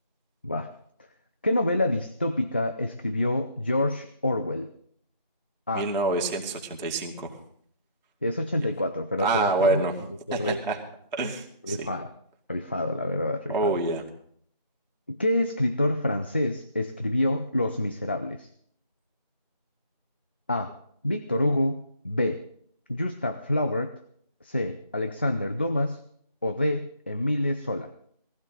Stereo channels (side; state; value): both; inverted; correlation -0.59